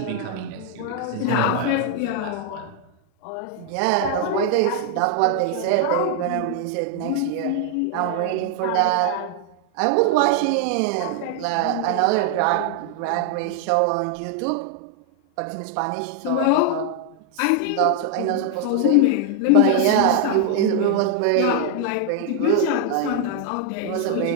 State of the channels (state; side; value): different; both; correlation 0.00